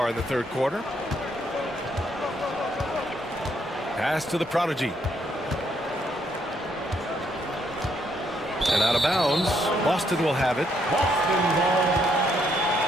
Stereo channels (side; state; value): both; normal; correlation 0.73